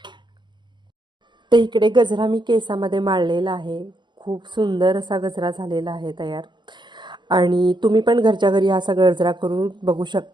तर इकडे गजरा मी केसामध्ये माळलेला आहे. खूप सुंदर असा गजरा झालेला आहे तयार. आणि तुम्ही पण घरच्या घरी असा गजरा करून बघू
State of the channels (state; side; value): late; left; 0.22 ms